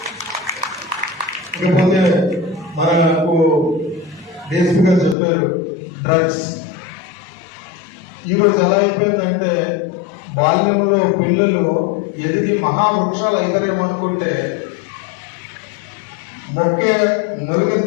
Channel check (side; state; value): right; drops out; at 5.2 s